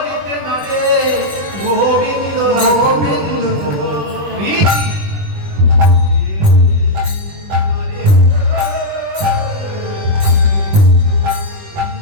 না রে গোবিন্দ গোবিন্দ।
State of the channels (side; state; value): left; late; 21 ms